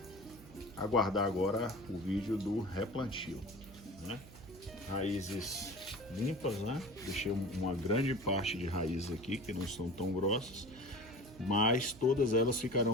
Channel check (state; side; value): noise; right; hum, 19 dB below the sound